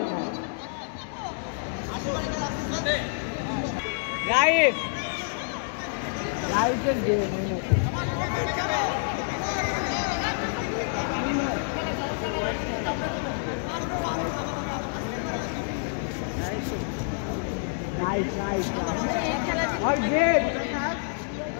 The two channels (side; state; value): right; silent; digital silence